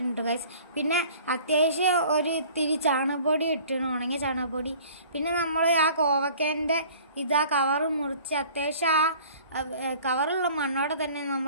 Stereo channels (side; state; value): both; inverted; correlation -0.49